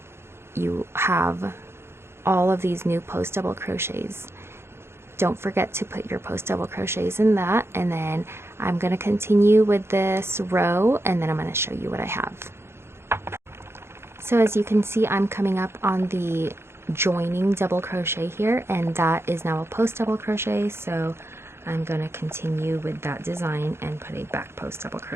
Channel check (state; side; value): late; left; 0.12 ms